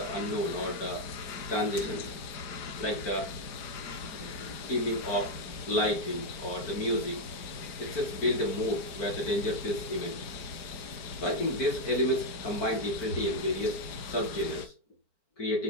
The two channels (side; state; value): right; late; 4.5 ms